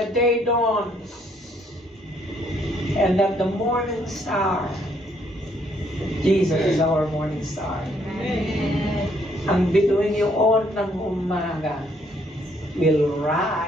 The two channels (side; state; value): both; normal; correlation 0.68